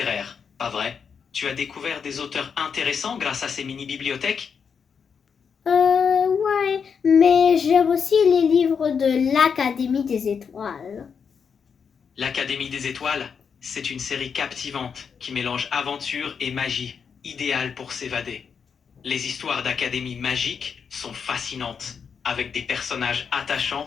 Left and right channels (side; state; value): right; quieter; 6.4 dB